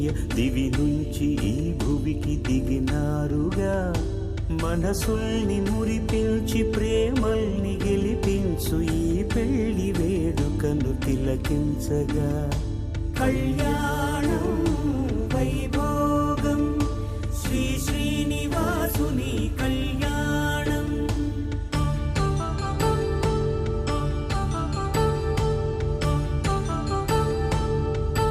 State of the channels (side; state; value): both; identical; correlation 1.00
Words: దివి నుంచి ఈ భువికి దిగినారుగా మనసుల్ని మురిపించి ప్రేమల్ని గెలిపించు ఈ పెళ్లి వేడుకను తిలకించగా కళ్యాణం వైభోగం శ్రీ శ్రీనివాసుని కళ్యాణం.